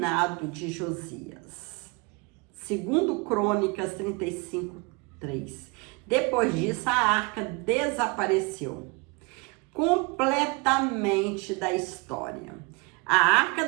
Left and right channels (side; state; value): left; quieter; 28.9 dB